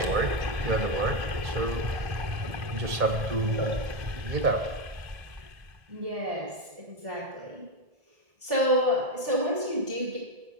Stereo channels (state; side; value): late; left; 1.7 ms